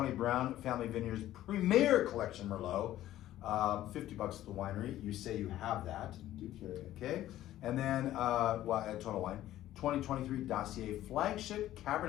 Browne Family Vineyards Premier Collection Merlot, $50 at the winery. You say you have that, Do carry it. okay? And then, at Total Wine, 2023 Dossier Flagship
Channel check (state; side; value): quieter; right; 13.7 dB